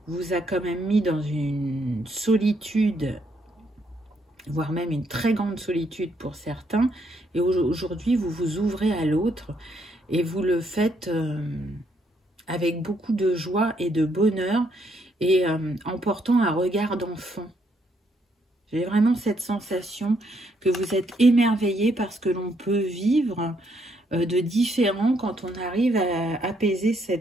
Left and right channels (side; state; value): both; normal; correlation 0.73